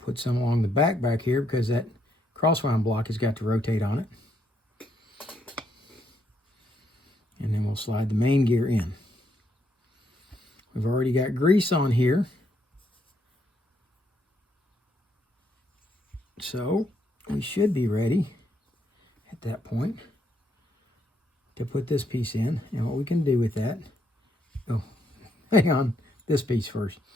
some along the back here because that crosswind block has got to rotate on it. And then we'll slide the main gear in. We've already got grease on here. So we should be ready at that point to put this piece in. And what we can do with that, oh, hang on, this piece first.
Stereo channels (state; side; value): normal; both; correlation 0.75